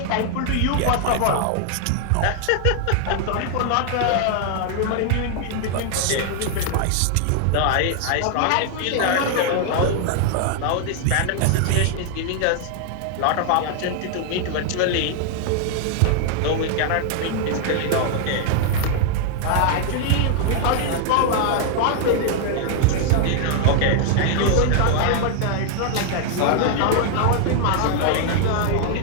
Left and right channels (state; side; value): different; both; correlation 0.00